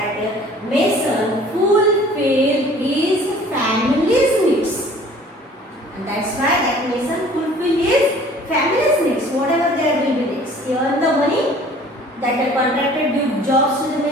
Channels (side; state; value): both; normal; correlation 0.50